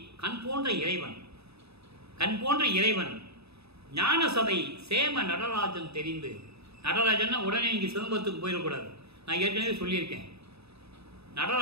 கண் போன்ற இறைவன், கண் போன்ற இறைவன். ஞான சபை சேம நடராஜன் தெரிந்து, நடராஜன்னா உடனே இங்கே சிதம்பரத்துக்கு போயிடக்கூடாது. நான் ஏற்கனவே சொல்லியிருக்கேன்.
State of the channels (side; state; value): left; late; 0.79 ms